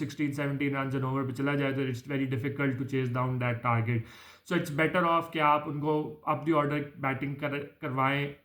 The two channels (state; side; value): identical; both; correlation 1.00